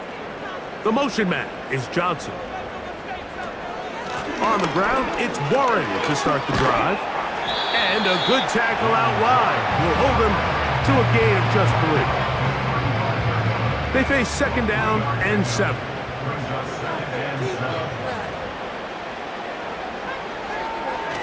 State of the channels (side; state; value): both; identical; correlation 1.00